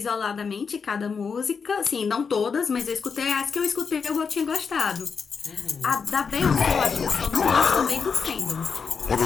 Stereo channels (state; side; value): quieter; right; 5.7 dB